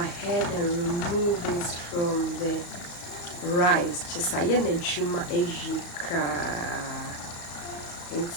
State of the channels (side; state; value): right; late; 35 ms